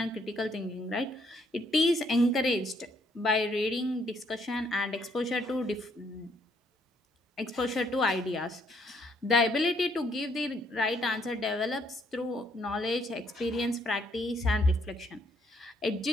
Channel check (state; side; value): normal; both; correlation 0.69